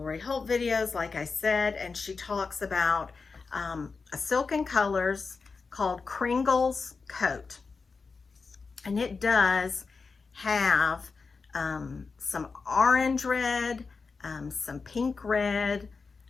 Holt videos, like I said, and she talks about a silk in colors called Kringle's Coat. And it does have some orange red, some pink red.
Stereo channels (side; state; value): right; quieter; 4.6 dB